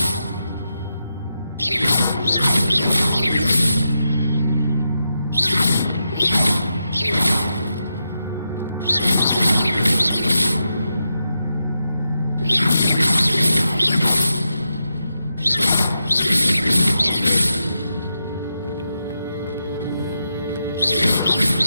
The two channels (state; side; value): inverted; both; correlation -0.86